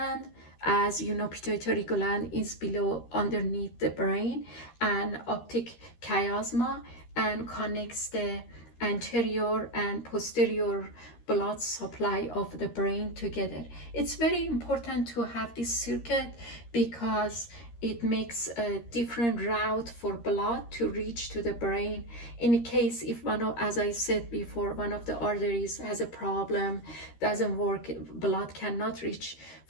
As you know, pituitary gland is below, underneath the brain, and optic chiasma, and connects the anterior and posterior blood supply of the brain together. It's very important to have this circuit because it makes a different route for blood to reach to the brain. In case if as I said before, one of the arteries has a problem, doesn't work, blood cannot reach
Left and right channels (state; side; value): late; right; 13 ms